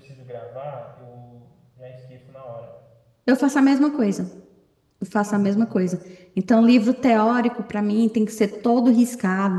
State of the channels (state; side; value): identical; both; correlation 1.00